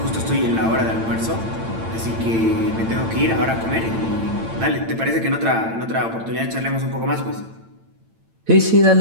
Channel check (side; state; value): left; late; 8.9 ms